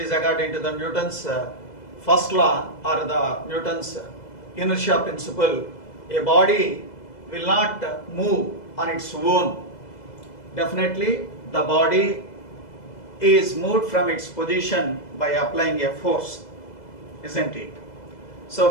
according to the Newton's first law or the Newton's inertia principle. A body will not move on its own. Definitely the body is moved from its position by applying a force, isn't it? So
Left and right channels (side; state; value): right; late; 2.0 ms